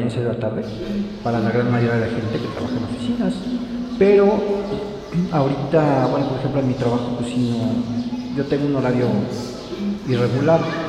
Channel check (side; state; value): both; identical; correlation 1.00